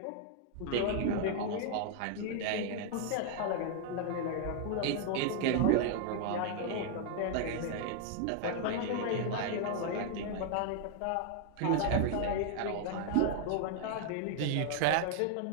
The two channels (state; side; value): different; both; correlation 0.00